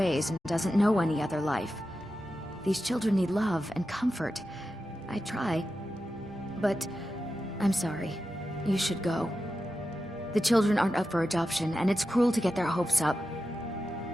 and doesn't know any other life. These children need love and comfort. I try. But I'm sorry. You should go. The children aren't up for adoption, and it's cruel to get their hopes up.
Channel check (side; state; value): both; normal; correlation 0.91